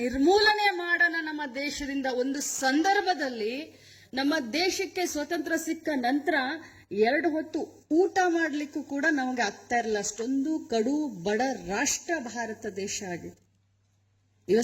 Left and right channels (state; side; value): identical; both; correlation 1.00